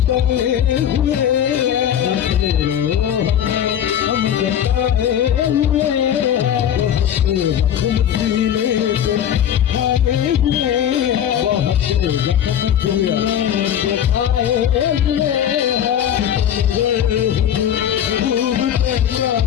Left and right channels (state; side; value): quieter; right; 9.8 dB